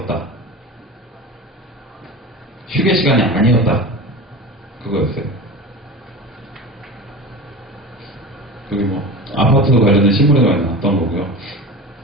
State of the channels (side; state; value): both; normal; correlation 0.31